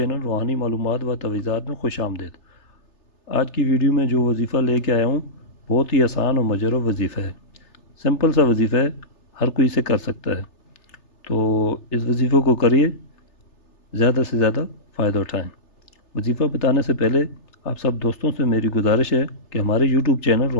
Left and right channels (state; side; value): late; right; 3.3 ms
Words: روحانی معلومات و تویزات میں خوش آمدید۔ آج کی ویڈیو میں جو وظیفہ لے کے آیا ہوں بہت ہی آسان اور مجرب وظیفہ ہے، سمپل سا وظیفہ ہے، ہر کوئی اسے کر سکتا ہے۔ تو اس وظیفے کو کریے، زیادہ سے زیادہ فائدہ اٹھائیں۔ وظیفہ بتانے سے پہلے آپ سب دوستوں سے میری گزارش ہے کہ ہمارے یوٹیوب چینل